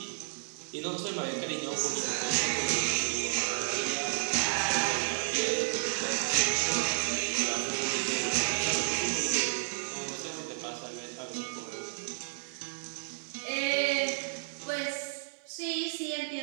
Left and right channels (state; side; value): silent; left; 57 dB below the other